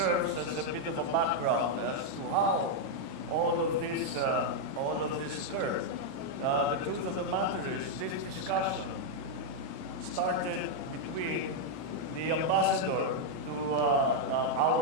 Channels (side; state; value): left; late; 38 ms